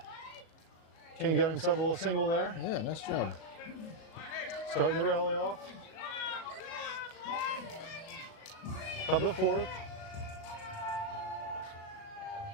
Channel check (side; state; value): right; late; 37 ms